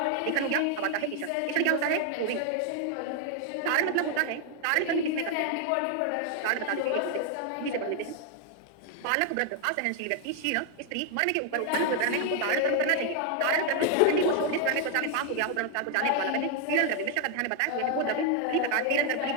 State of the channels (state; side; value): different; both; correlation 0.00